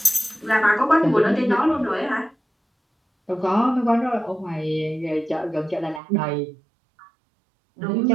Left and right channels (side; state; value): left; drops out; at 6.0 s